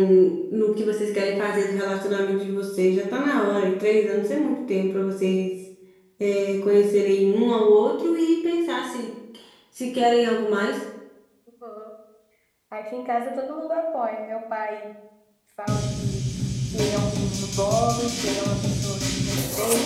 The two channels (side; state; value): both; identical; correlation 1.00